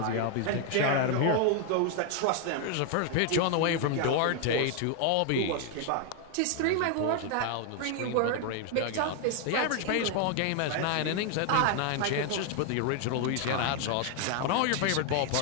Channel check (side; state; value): both; different; correlation 0.00